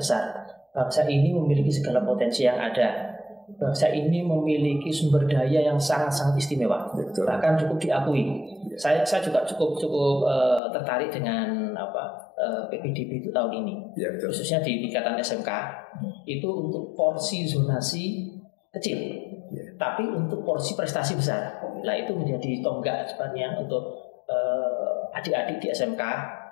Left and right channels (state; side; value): drops out; right; at 10.6 s